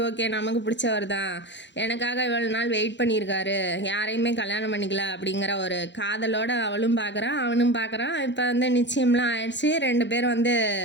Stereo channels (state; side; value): late; right; 0.52 ms